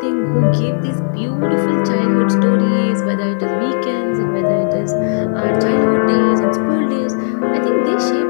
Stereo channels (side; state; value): right; silent; digital silence